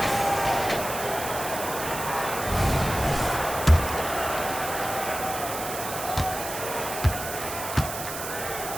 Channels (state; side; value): noise; right; hiss, 7 dB below the sound